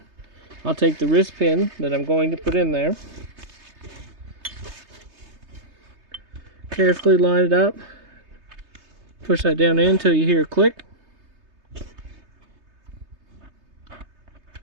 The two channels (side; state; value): left; late; 3.3 ms